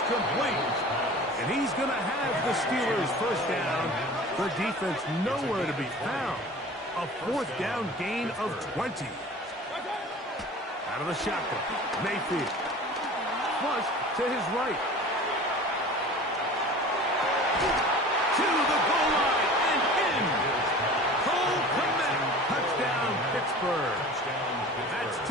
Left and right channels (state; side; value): normal; both; correlation 0.40